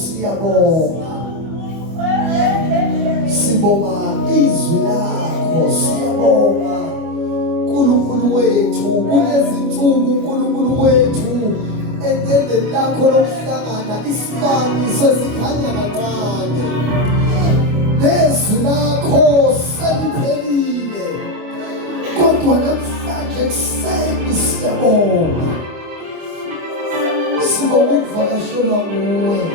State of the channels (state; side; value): late; left; 25 ms